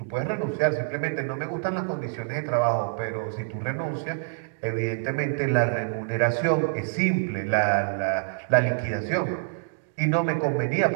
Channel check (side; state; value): left; silent; digital silence